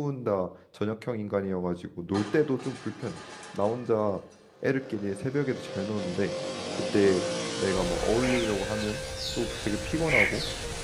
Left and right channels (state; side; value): identical; both; correlation 1.00